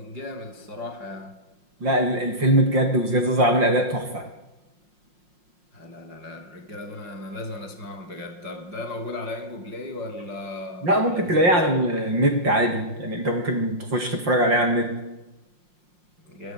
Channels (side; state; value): left; late; 5.6 ms